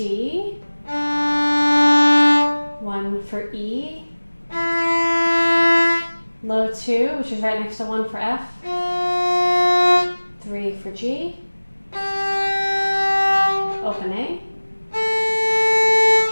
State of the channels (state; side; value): inverted; both; correlation -1.00